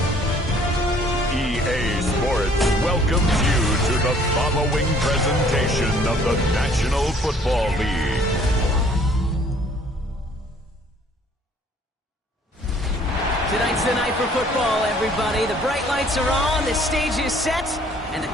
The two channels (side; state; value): both; normal; correlation 0.58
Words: EA Sports welcomes you to the following presentation of the National Football League. Tonight's the night for football, everybody. The bright lights are on, the stage is set, and the